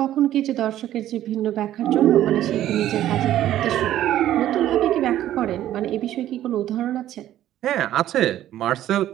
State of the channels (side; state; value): left; quieter; 12.7 dB